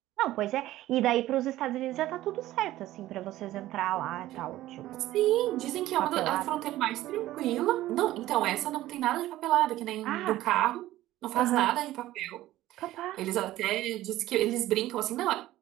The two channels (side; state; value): left; quieter; 15.3 dB